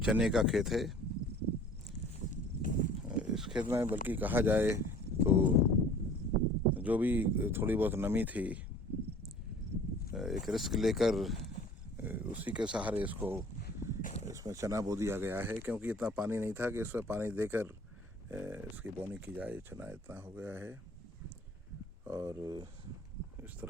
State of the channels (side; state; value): both; normal; correlation 0.49